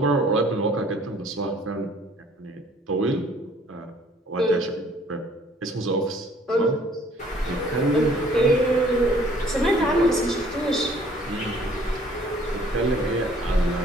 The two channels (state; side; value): normal; both; correlation 0.57